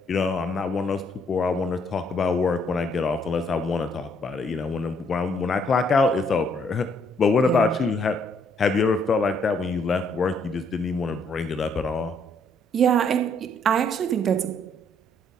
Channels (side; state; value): both; normal; correlation 0.68